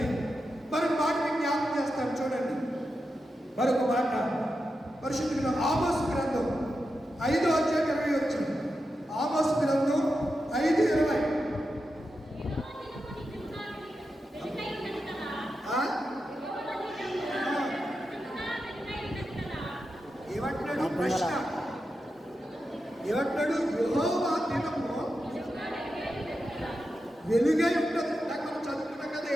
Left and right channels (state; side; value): normal; both; correlation 0.89